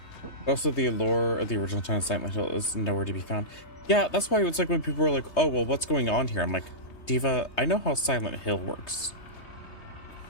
But also the allure of the original China Silent Hill is nowhere to be found. Yeah, that's why it's like when people were like, oh, well, what's going on here? I'm like, Diva, I know how Silent Hill works.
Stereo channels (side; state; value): right; late; 3.2 ms